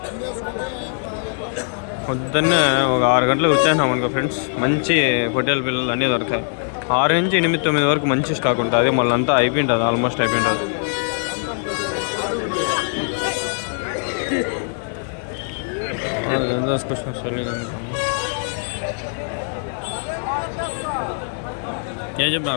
పొద్దున్నే ఒక 6 గంటలకు వచ్చేసినాం అనుకో ఫ్రెండ్స్, మంచి పొట్టేల పిల్లలు అన్నీ దొరుకుతాయి. 6 నుంచి 8-9 వరకు మంచి స్టాక్ ఉంటుంది. మళ్ళీ అంతా అయిపోయింటుంది, ఆల్మోస్ట్ అయిపోయింటుంది. ఏం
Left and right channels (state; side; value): silent; right; 65 dB below the other